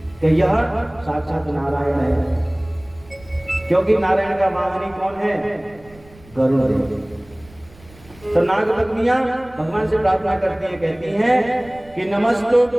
कि यह साक्षात नारायण है, क्योंकि नारायण का वाहनी कौन है? गरुड़। तो नाग पत्नियां भगवान से प्रार्थना करती हैं, कहती हैं कि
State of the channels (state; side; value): noise; right; rumble, 24 dB below the sound